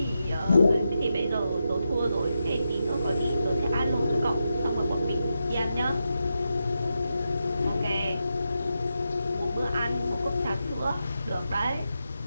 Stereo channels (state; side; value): inverted; both; correlation -0.87